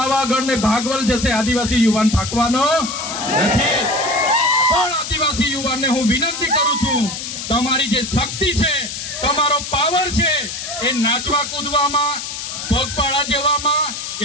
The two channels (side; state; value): left; noise; hiss, 7 dB below the sound